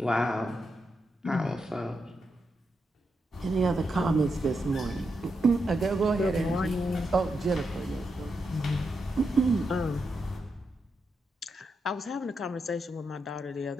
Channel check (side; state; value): both; normal; correlation 0.84